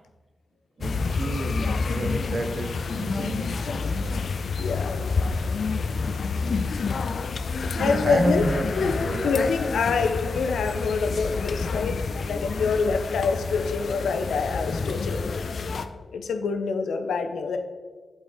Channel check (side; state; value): right; quieter; 3.7 dB